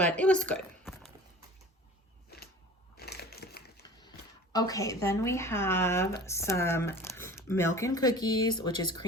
it was good. Okay, then we have some milk and cookies, which is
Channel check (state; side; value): normal; both; correlation 0.41